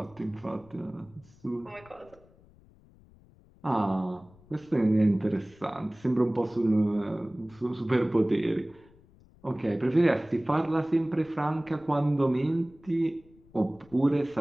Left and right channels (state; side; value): noise; left; rumble, 27 dB below the sound